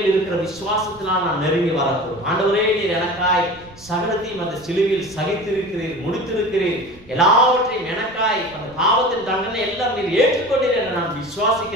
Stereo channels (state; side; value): noise; right; rumble, 24 dB below the sound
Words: இருக்கிற விசுவாசத்தினால் நாம் நெருங்கி வரக்கூடும். ஆண்டவரே, நீர் எனக்காய் சகலத்தையும் அந்த சிலுவையில் சகித்திருக்கிறீர், முடித்திருக்கிறீர், எல்லாவற்றையும் எனக்காய் அந்த பாவத்தின் தண்டனை எல்லாம் நீர் ஏற்றுக்கொண்டீர் என்று நான்